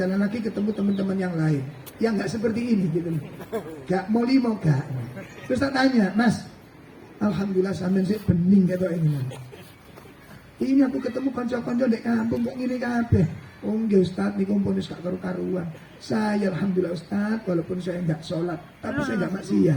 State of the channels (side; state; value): both; identical; correlation 1.00